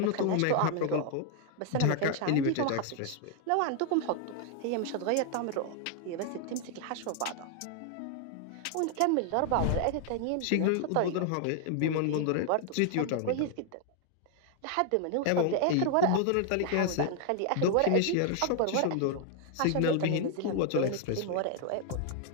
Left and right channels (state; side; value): different; both; correlation 0.00